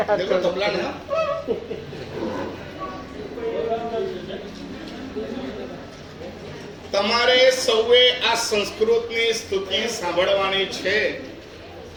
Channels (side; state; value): both; identical; correlation 1.00